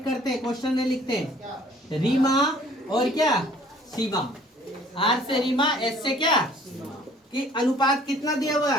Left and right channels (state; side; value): normal; both; correlation 0.55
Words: करते हैं, क्वेश्चन में लिखते हैं रीमा और क्या? सीमा। आर से रीमा, एस से क्या? कि अनुपात कितना दिया हुआ